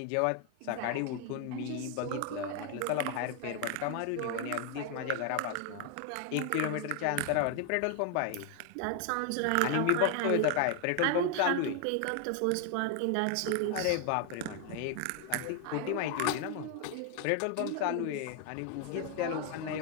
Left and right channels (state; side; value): different; both; correlation 0.00